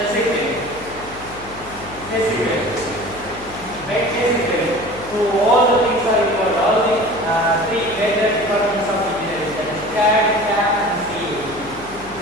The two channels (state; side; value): noise; left; hum, 17 dB below the sound